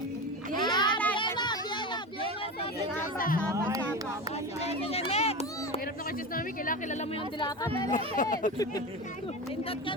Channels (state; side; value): normal; both; correlation 0.24